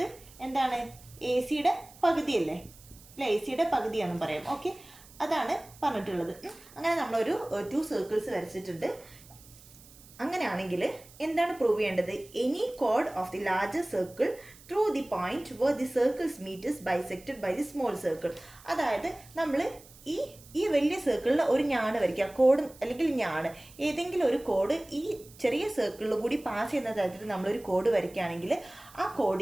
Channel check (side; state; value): right; noise; hiss, 22 dB below the sound